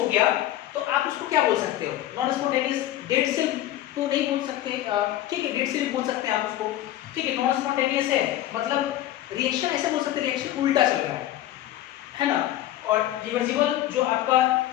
गया तो आप उसको क्या बोल सकते हो, नॉन स्पॉन्टेनियस, डेड सेल तो नहीं बोल सकते, ठीक है, डेड सेल बोल सकते हैं आप उसको, ठीक है। नॉन स्पॉन्टेनियस है मतलब रिएक्शन ऐसे बोल सकते हैं, रिएक्शन उल्टा चल रहा है ना। और रिवर्सिबल जो आपका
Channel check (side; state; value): right; quieter; 13.7 dB